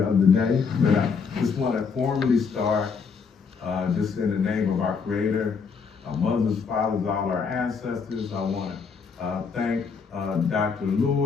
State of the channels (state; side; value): quieter; right; 5.6 dB